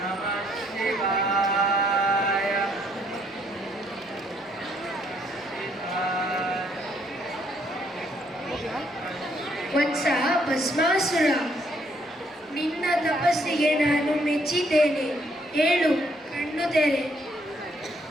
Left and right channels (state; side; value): normal; both; correlation 0.69